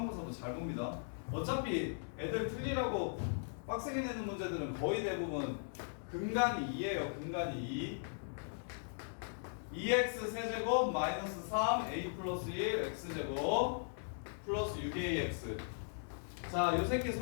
잘 봅니다. 어차피 애들 틀리라고 빡세게 내는 문제들은 거의 대부분 근간이 2예요. 근간이 2. 2x 세제곱 마이너스 3 a 플러스 1 x제곱 플러스 6ax. 자, 요 새끼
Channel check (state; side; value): silent; right; digital silence